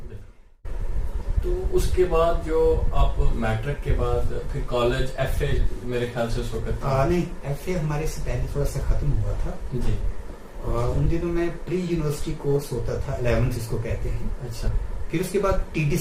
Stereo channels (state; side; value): identical; both; correlation 1.00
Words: میں. تو اس کے بعد جو آپ میٹرک کے بعد پھر کالج ایف اے میرے خیال سے اس وقت نہیں, ایف اے ہمارے سے پہلے تھوڑا سا ختم ہوا تھا جی. ان دنوں میں پری یونیورسٹی کورس ہوتا تھا 11th اس کو کہتے ہیں. اچھا. پھر اس کے بعد ٹی ڈی